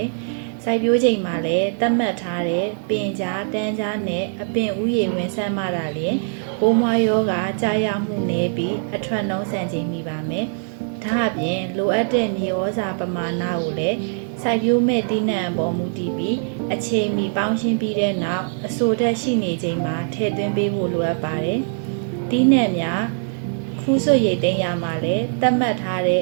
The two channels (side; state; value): left; silent; 61 dB below the other